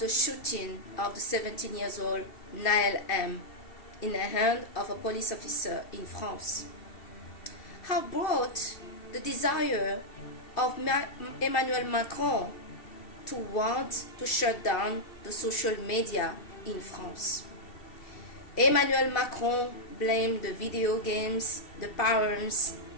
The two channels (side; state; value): right; late; 2.7 ms